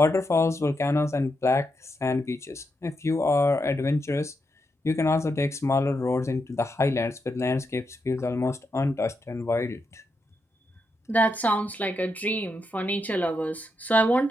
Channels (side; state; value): both; normal; correlation 0.84